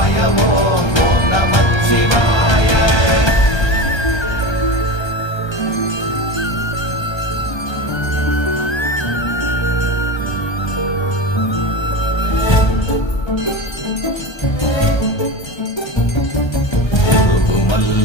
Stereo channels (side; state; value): right; late; 1.3 ms